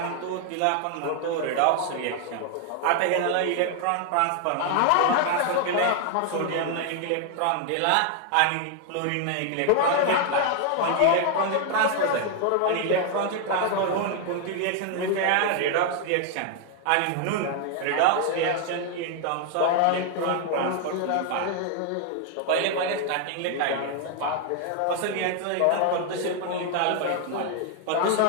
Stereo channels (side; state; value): both; different; correlation 0.00